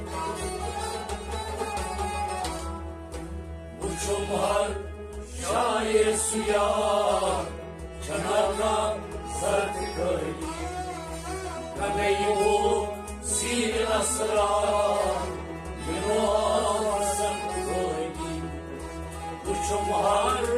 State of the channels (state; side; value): identical; both; correlation 1.00